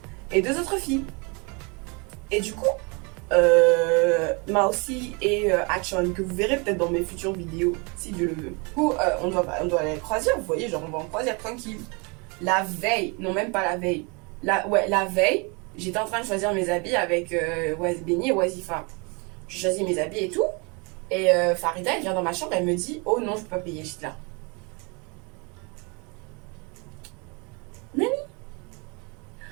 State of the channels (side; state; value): left; quieter; 31.1 dB